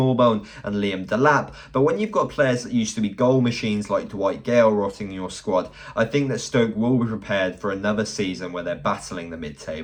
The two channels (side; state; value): both; identical; correlation 1.00